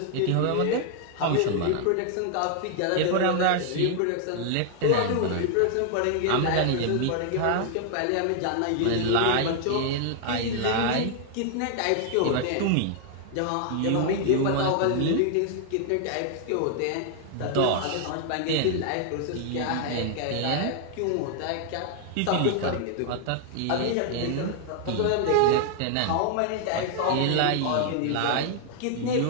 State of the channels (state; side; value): different; both; correlation 0.00